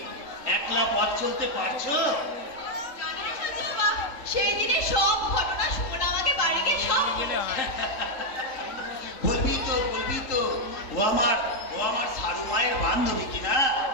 একলা পথ চলতে পারছো? সেই দিনে সব ঘটনা শোনা আমাকে বাড়িতে সব বলবি তো, বলবি তো। ও আমার সারু মায়ের বান্ধবী কিনা?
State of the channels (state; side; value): late; right; 3.7 ms